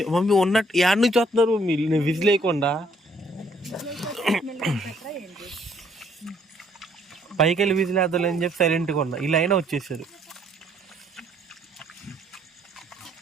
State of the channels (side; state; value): both; normal; correlation 0.65